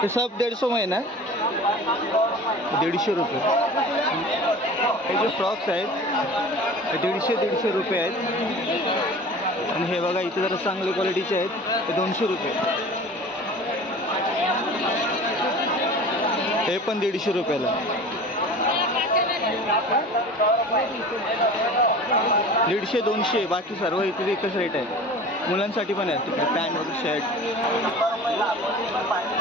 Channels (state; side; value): normal; both; correlation 0.39